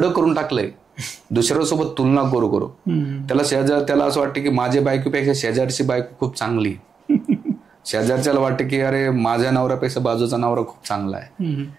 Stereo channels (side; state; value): left; quieter; 5.9 dB